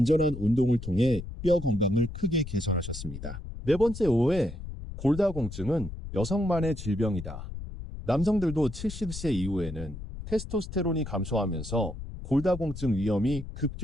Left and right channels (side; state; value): left; noise; rumble, 10 dB below the sound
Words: 운동을 통해 뼈 건강을 크게 개선하셨습니다. 네 번째 오해, 골다공증은 여성만의 질병이다. 남성들도 70세 이후에는 테스토스테론이 감소하면서 골다공증 위험이